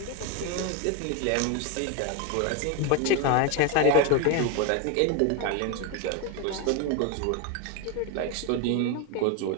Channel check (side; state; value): both; different; correlation 0.01